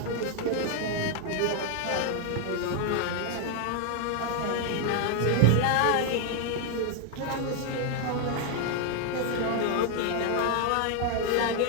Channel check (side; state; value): both; different; correlation 0.00